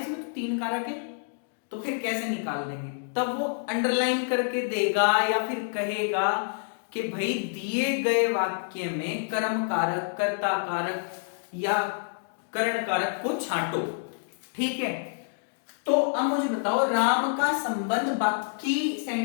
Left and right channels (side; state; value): right; silent; digital silence